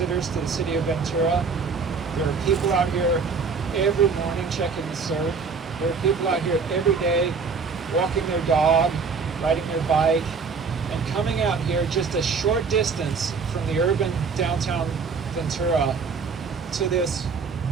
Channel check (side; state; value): left; quieter; 5.1 dB